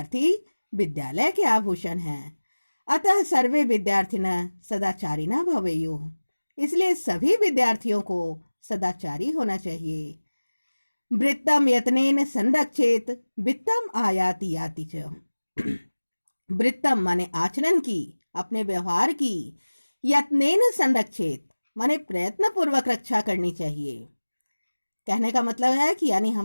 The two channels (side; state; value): both; inverted; correlation -1.00